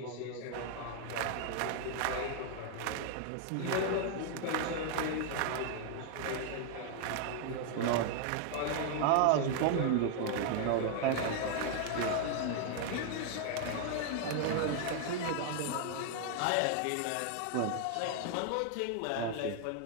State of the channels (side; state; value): both; different; correlation 0.00